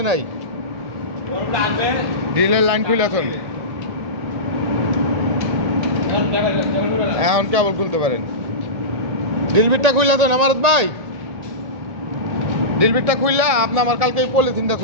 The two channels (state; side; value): late; left; 1.9 ms